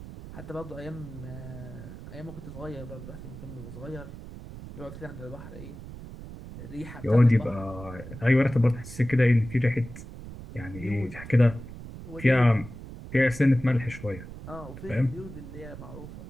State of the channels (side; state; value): right; noise; rumble, 13 dB below the sound